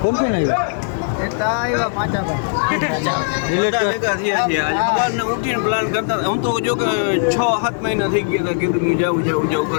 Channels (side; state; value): right; silent; digital silence